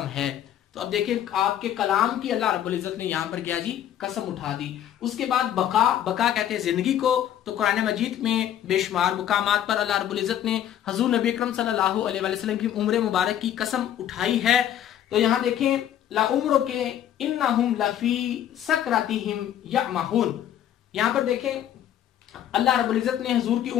है। तो अब देखिए आपके कलाम की अल्लाह रब्बुल इज्जत ने यहाँ पर क्या जी कसम उठा दी। उसके बाद बका, बका कहते हैं जिंदगी को, तो कुरान मजीद में बेशुमार मुकामात पर अल्लाह रब्बुल इज्जत ने हजूर नबी अकरम सल्लल्लाहु अलैहि वसल्लम की उम्र मुबारक की कसम उठाई है। तो यहाँ देखें ला उम्र के इन्नहुम लफी सकरातिहिम यअमहून, यहाँ पर देखें अल्लाह रब्बुल इज्जत ने हजूर की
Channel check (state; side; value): quieter; right; 10.9 dB